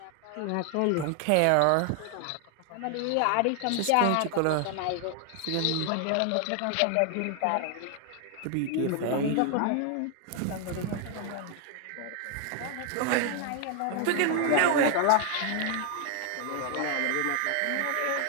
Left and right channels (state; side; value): different; both; correlation 0.00